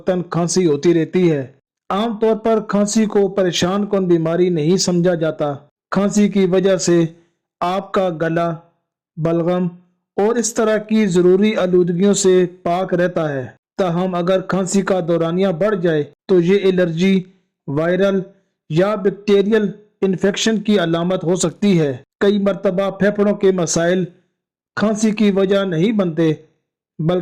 کھانسی ہوتی رہتی ہے۔ عام طور پر کھانسی کو پریشان کن بیماری نہیں سمجھا جاتا۔ کھانسی کی وجہ سے آپ کا گلا، بلغم اور اس طرح کی ضروری آلودگیوں سے پاک رہتا ہے۔ تاہم اگر کھانسی کا دورانیہ بڑھ جائے تو یہ الرجی، وائرل یا بیکٹیریل انفیکشن کی علامت ہو سکتی ہے۔ کئی مرتبہ پھیپھڑوں کے مسائل کھانسی کی وجہ نہیں بنتے،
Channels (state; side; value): identical; both; correlation 1.00